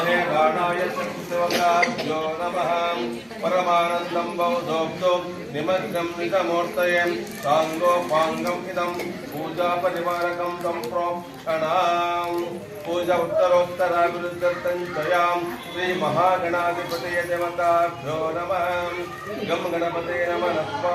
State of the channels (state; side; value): identical; both; correlation 1.00